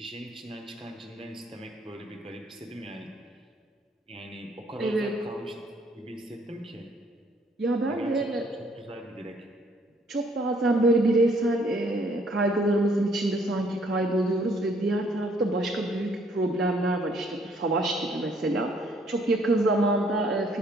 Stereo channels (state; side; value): normal; both; correlation 0.65